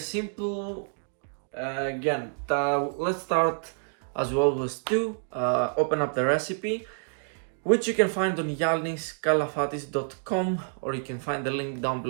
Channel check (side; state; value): left; silent; digital silence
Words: Let's start as we always do. Open up the recipe, which you can find on yanniskalafatis.com, or you can find the link down